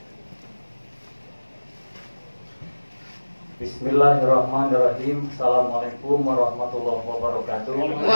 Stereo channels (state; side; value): inverted; both; correlation -1.00